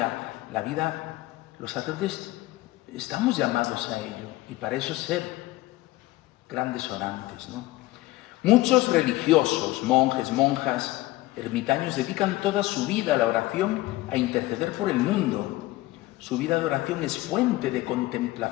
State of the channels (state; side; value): quieter; right; 18.1 dB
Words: la vida. Los sacerdotes estamos llamados a ello y para eso ser grandes orantes, ¿no? Muchos religiosos, monjes, monjas, ermitaños dedican toda su vida a la oración, a interceder por el mundo. Su vida de oración es fuente de